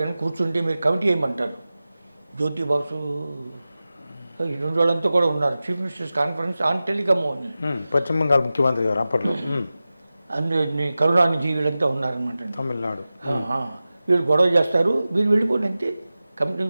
కానీ కూర్చుంటే మీరు కమిటీ వేయమంటారు. జ్యోతి బాసు ఈ 2 వాళ్ళంతా కూడా ఉన్నారు. Chief ministers conference on telecom అని. పశ్చిమ బెంగాల్ ముఖ్యమంత్రి గారు అప్పట్లో. అందులో కరుణానిధి వీళ్ళంతా ఉన్నారనమాట. తమిళనాడు. వీళ్ళు గొడవ చేస్తారు, వీళ్ళు వెళ్ళిపోండి అంతే. కమిటీ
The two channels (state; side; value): inverted; both; correlation -0.95